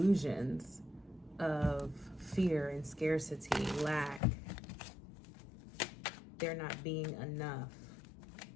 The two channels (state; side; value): drops out; right; at 4.2 s